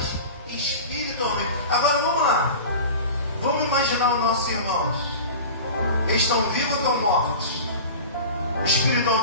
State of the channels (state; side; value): inverted; both; correlation -0.35